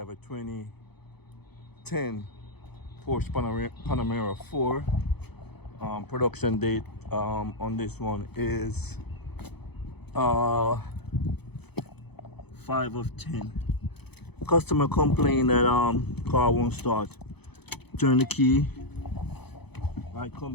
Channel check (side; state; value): right; late; 0.98 ms